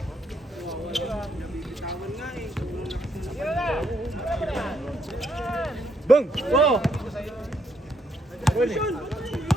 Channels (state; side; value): normal; both; correlation 0.74